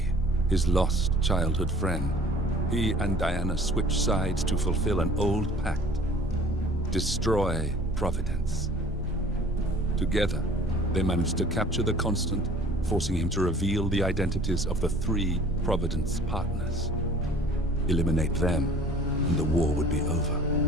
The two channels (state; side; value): normal; both; correlation 0.49